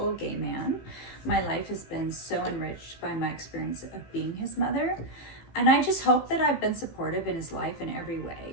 gay man. My life has been so enriched by my experience of being his mother, and I just hope that I've been supportive in his life in every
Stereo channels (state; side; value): late; right; 15 ms